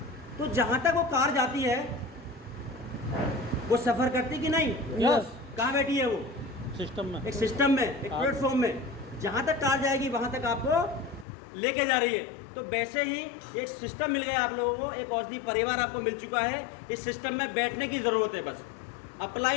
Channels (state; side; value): drops out; right; at 11.2 s